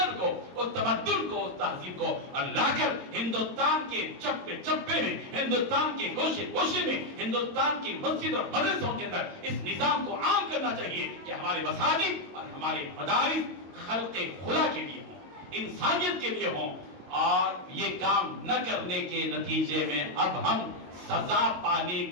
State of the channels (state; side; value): late; left; 22 ms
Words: کو، اس تمدن کو، اس تہذیب کو، اور لا کر ہندوستان کے چپے چپے میں، ہندوستان کے گوشے گوشے میں، ہندوستان کی مسجد اور مدرسوں کے اندر اس نظام کو عام کرنا چاہیے کہ ہمارے مساجد اور ہمارے مدارس خلق خدا کے لیے ہوں، انسانیت کے لیے ہوں، اور یہ کام نہ کرنے کے نتیجے میں اب ہم سزا پانے